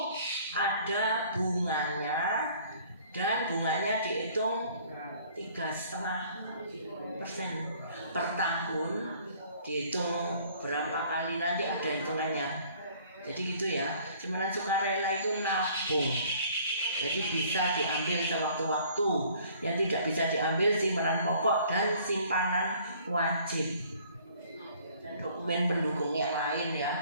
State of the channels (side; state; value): both; inverted; correlation -0.56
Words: ada bunganya, dan bunganya dihitung 3,5% per tahun. Dihitung berapa kali nanti ada hitungannya. Jadi gitu ya. Simpanan sukarela itu nabung. Jadi bisa diambil sewaktu-waktu. Yang tidak bisa diambil simpanan pokok dan simpanan wajib. Dan dokumen pendukungnya lain